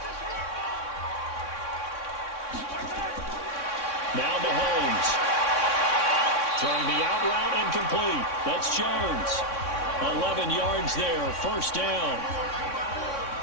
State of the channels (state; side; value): late; right; 3.6 ms